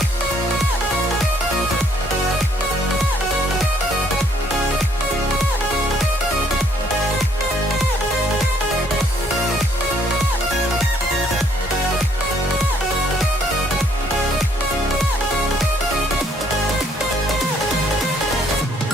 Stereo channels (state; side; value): normal; both; correlation 0.65